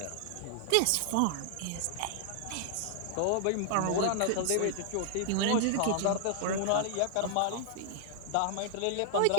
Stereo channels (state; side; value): different; both; correlation 0.00